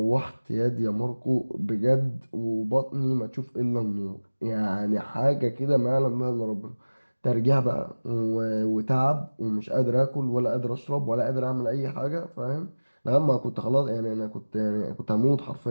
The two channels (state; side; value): inverted; both; correlation -1.00